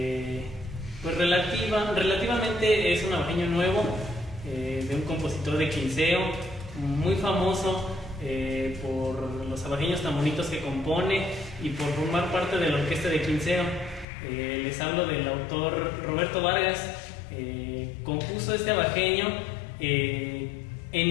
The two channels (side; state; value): right; drops out; at 14.1 s